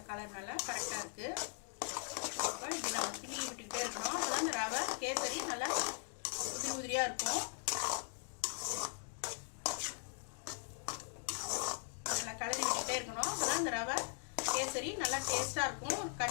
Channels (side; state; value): right; silent; 51 dB below the other